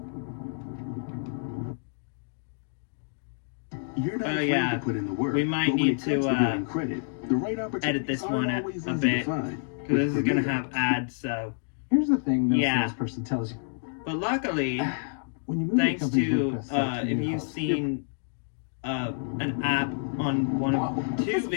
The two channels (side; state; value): right; silent; digital silence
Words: You're not afraid to put in the work. We might need to credit, the right edit this one a bit, because this is going to have ads, so... Here's the thing no salesperson tells you. But luckily, When you move thanks your company's to WordPress site to if your you've host, seen an app on one of two This one